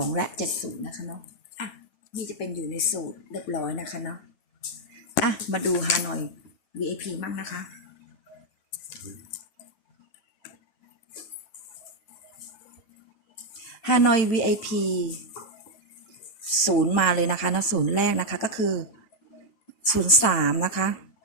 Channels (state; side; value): late; right; 8.7 ms